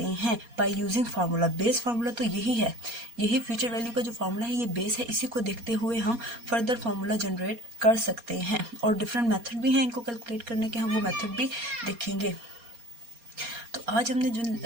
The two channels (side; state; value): left; late; 4.3 ms